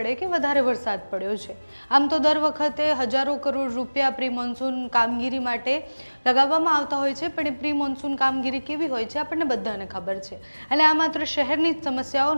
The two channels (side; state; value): both; inverted; correlation -1.00